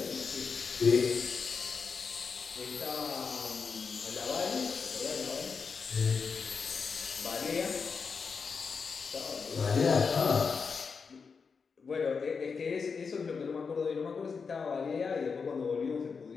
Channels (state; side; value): quieter; right; 5.4 dB